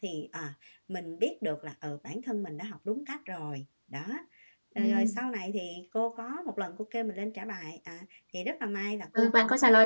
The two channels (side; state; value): both; inverted; correlation -1.00